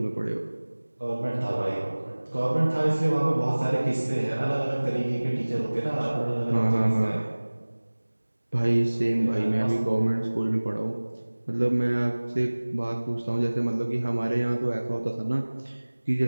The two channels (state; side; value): inverted; both; correlation -1.00